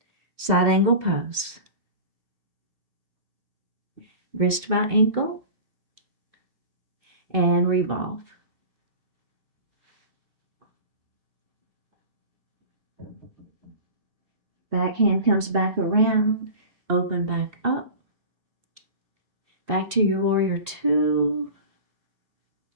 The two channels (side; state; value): left; late; 2.7 ms